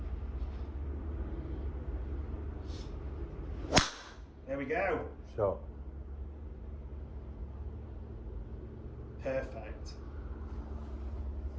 There we go. Shot. Perfect.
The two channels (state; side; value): identical; both; correlation 1.00